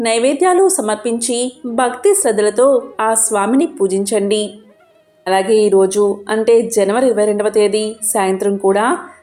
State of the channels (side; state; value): both; identical; correlation 1.00